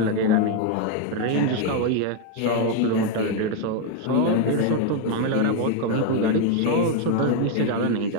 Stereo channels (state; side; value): different; both; correlation 0.01